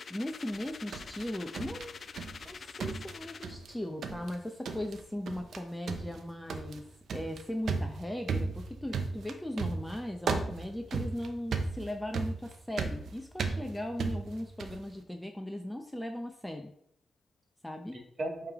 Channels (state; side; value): normal; both; correlation 0.87